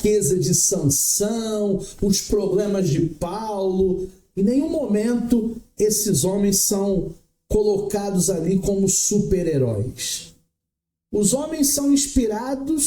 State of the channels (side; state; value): both; identical; correlation 1.00